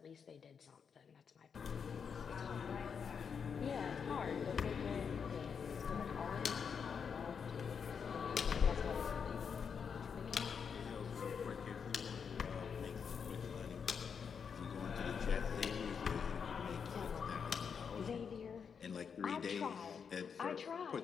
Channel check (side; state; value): right; quieter; 6.5 dB